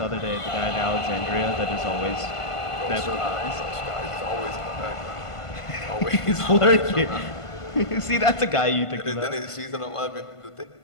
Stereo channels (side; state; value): right; late; 1.5 ms